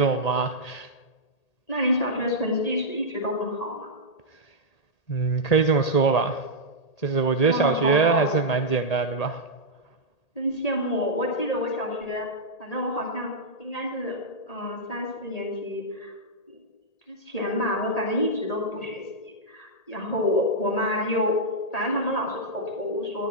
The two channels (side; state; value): right; late; 1.8 ms